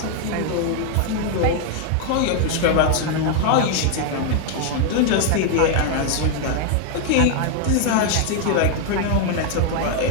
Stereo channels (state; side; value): different; both; correlation 0.00